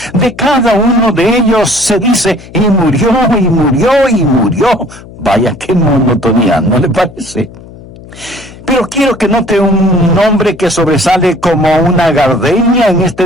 De cada uno de ellos se dice, y murió, y murió, y murió. Vaya, qué monotonía, ¿no le parece? Pero quiero que note un nombre que sobresale como una gardenia en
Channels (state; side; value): noise; left; hum, 19 dB below the sound